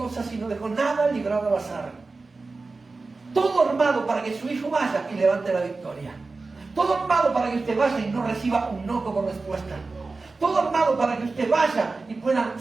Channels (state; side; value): quieter; left; 3.8 dB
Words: y no dejó nada librado al azar. Todo armado para que su hijo vaya y levante la victoria. Todo armado para que usted vaya y no reciba un no como respuesta. Todo armado para que usted vaya y pueda